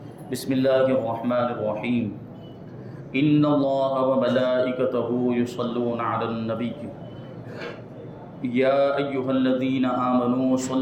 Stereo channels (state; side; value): identical; both; correlation 1.00